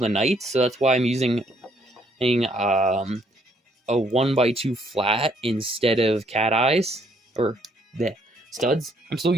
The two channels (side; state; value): both; normal; correlation 0.68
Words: knights, so that's why I'm using a 1x2 flat instead of cat eyes, or the studs. I'm still